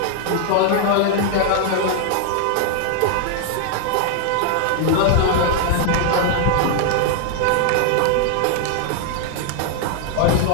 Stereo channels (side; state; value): both; different; correlation 0.00